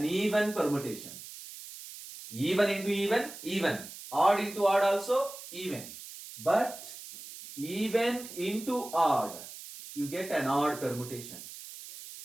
even permutation. Even into even, even. Odd into odd also, even. But even into odd, you get an odd permutation.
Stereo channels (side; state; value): right; noise; hiss, 13 dB below the sound